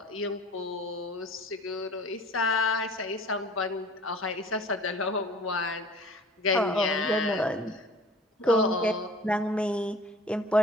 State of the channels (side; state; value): both; normal; correlation 0.46